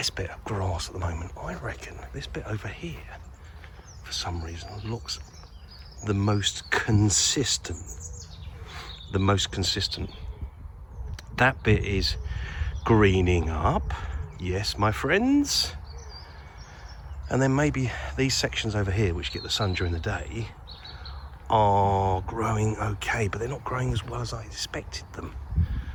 bit of grass at the moment? I reckon this bit over here, for some reason, looks the most consistent. The most consistent. That bit is greening up. Yes, my friends. And then maybe these sections over here, which get the sun during the day, are growing okay, but they're not growing as well as I expected them.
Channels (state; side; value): identical; both; correlation 1.00